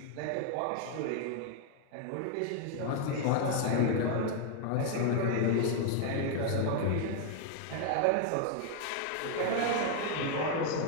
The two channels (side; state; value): both; different; correlation 0.00